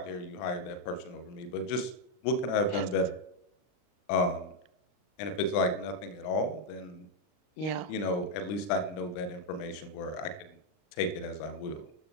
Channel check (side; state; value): right; late; 39 ms